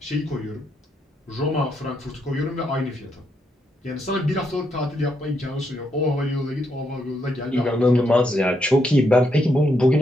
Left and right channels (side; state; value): both; normal; correlation 0.78